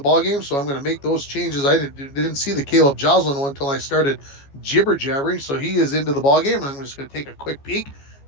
So I'm going to make those changes. I didn't see the Caleb Joslin one until I started jibber jabbering. So he is into the ballgame. And I'm just going to take a quick peek,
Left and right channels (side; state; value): right; late; 14 ms